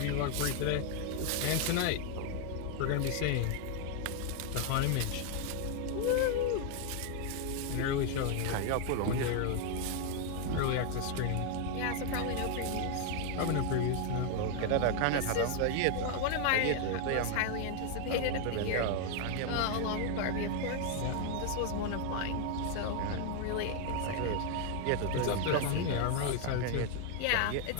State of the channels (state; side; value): different; both; correlation 0.00